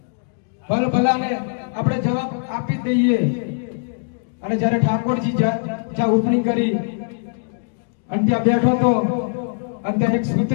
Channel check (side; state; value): right; silent; digital silence